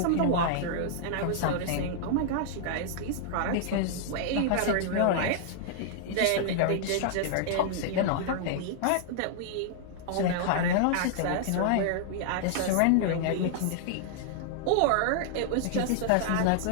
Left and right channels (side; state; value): both; different; correlation -0.01